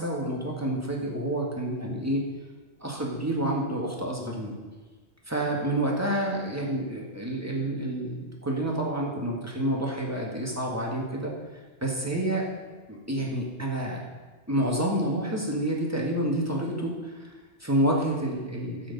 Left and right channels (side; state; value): both; normal; correlation -0.05